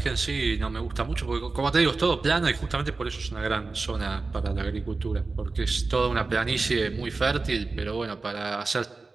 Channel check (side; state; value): left; quieter; 3.8 dB